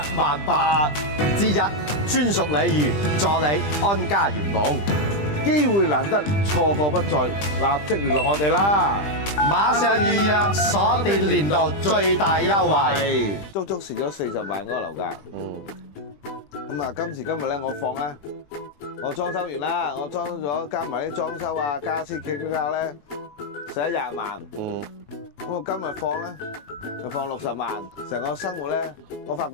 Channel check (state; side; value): late; right; 20 ms